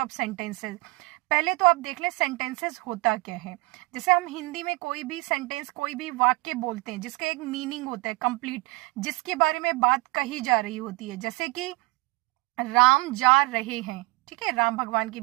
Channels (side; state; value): left; quieter; 24.2 dB